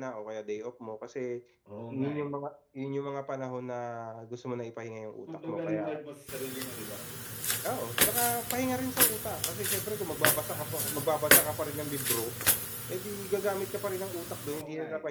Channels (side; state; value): both; identical; correlation 1.00